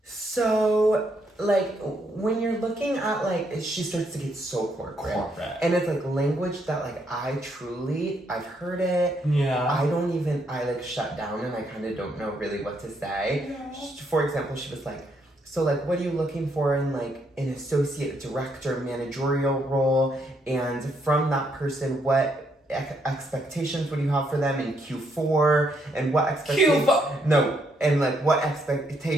so, like, when you're looking at, like, she starts to get so corporate. And it's, like, language that, like, I've heard it. Yeah. I, like, shut down, and I kind of don't know really what to say. Yeah. For example, she was like, so, like, what are you looking for in, like, an associate director managerial role? And from that person, what expectations would you have for them in Q4? And what expectations... Q4? No, and, like, what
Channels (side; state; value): both; normal; correlation 0.74